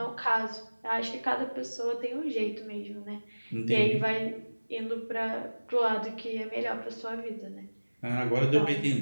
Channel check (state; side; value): inverted; both; correlation -1.00